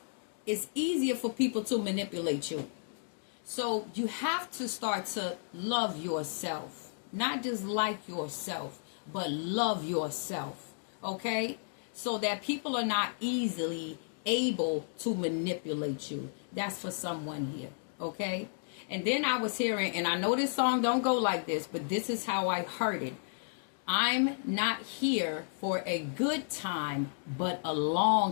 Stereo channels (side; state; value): right; silent; digital silence